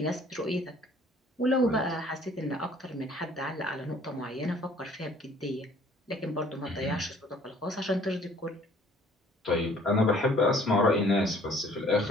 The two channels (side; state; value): both; normal; correlation 0.56